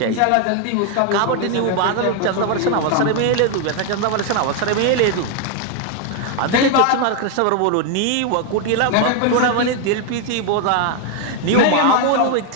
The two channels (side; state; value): both; different; correlation 0.01